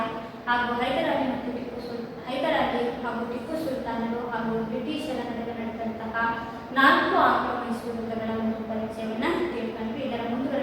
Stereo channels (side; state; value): both; identical; correlation 1.00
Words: ಹಾಗೂ ಹೈದರಾಲಿ ಹಾಗೂ ಟಿಪ್ಪು ಸುಲ್ತಾನರು ಹಾಗೂ ಬ್ರಿಟಿಷರ ನಡುವೆ ನಡೆದಂತಹ 4 ಆಂಗ್ಲೋ ಮೈಸೂರು ಯುದ್ಧಗಳ ಒಂದು ಪರಿಚಯವನ್ನ ತಿಳ್ಕೊಂಡ್ವಿ. ಇದರ